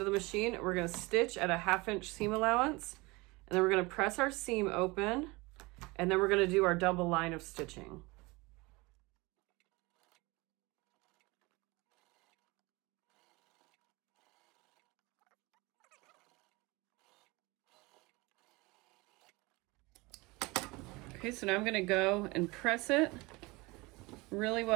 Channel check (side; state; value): left; quieter; 24.0 dB